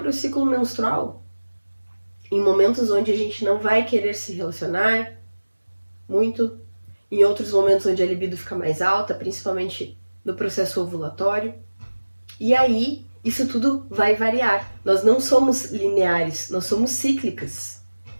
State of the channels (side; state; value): both; inverted; correlation -1.00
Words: ciclo menstrual. Em momentos onde a gente não vai querer se relacionar muito, em outros momentos onde a libido fica mais alta, principalmente no processo ovulatório. E aí, isso tudo vai variar. Nós não somos lineares, nós somos cíclicas.